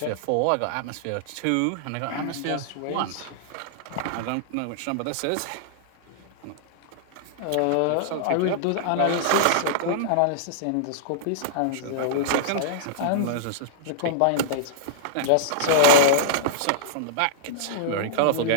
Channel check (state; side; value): different; both; correlation -0.02